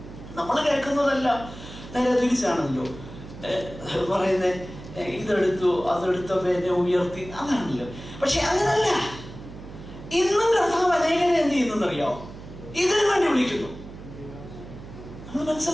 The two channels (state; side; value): noise; right; hum, 14 dB below the sound